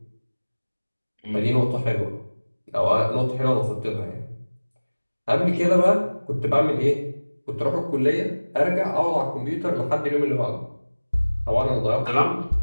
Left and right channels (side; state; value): both; inverted; correlation -1.00